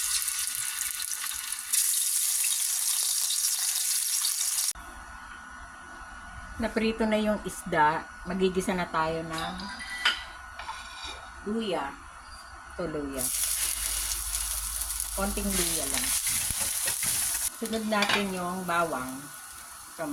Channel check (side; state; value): both; identical; correlation 1.00